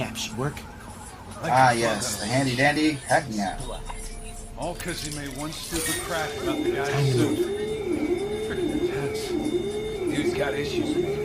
app should work. Ah, yes, the handy dandy hacking app. All because he made one stupid crack about the guy's suit. Freaking intense. Dude's got issues.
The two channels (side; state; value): both; identical; correlation 1.00